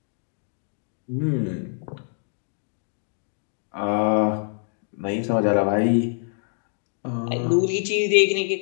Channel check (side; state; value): right; silent; digital silence